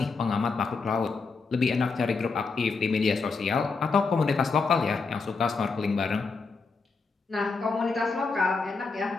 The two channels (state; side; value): quieter; right; 4.4 dB